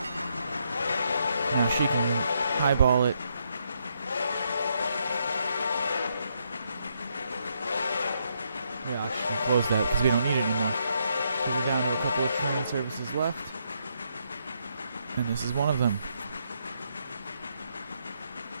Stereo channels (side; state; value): both; inverted; correlation -0.77